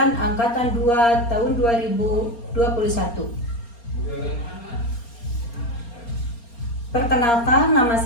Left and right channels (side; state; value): right; late; 4.3 ms